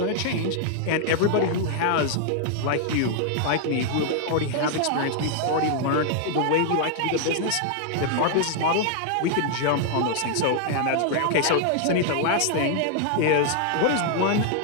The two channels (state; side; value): different; both; correlation 0.00